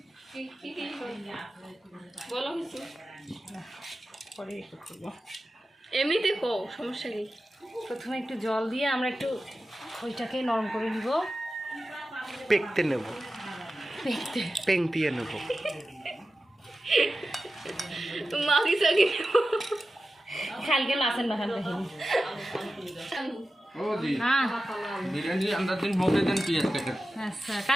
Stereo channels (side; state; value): both; normal; correlation 0.93